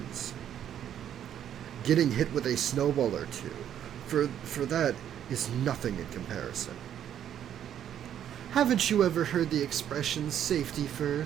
getting hit with a snowball or two, for that is nothing in comparison. Haven't you ever heard the expression safety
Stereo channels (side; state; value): left; quieter; 10.0 dB